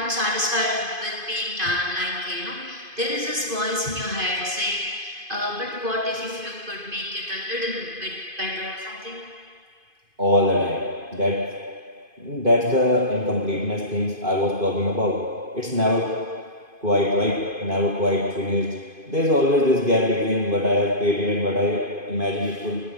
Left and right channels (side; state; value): left; late; 2.5 ms